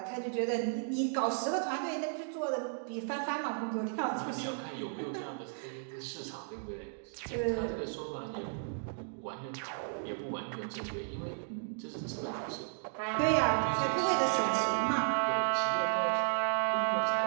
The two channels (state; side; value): silent; left; digital silence